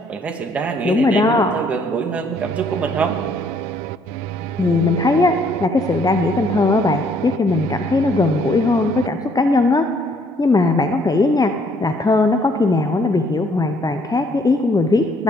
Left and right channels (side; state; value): both; normal; correlation 0.65